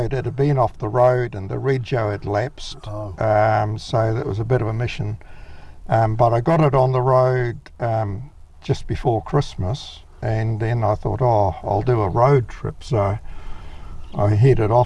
It had been off the road, and the rego had lapsed, Oh. so that was a bit of a mission. But I got it on the road just before Christmas, and then I thought, I'll do a road trip. So I headed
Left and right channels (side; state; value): both; identical; correlation 1.00